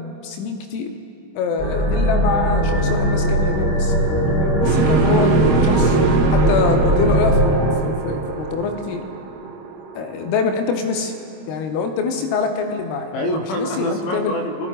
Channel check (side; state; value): right; late; 26 ms